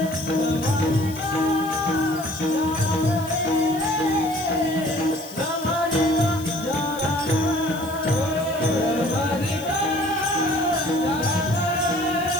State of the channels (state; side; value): noise; left; hiss, 16 dB below the sound